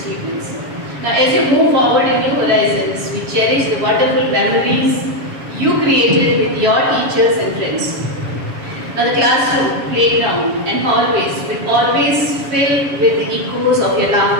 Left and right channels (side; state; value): left; late; 7.1 ms